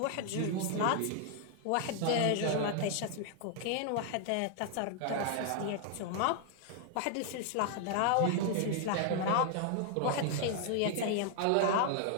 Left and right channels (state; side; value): different; both; correlation 0.00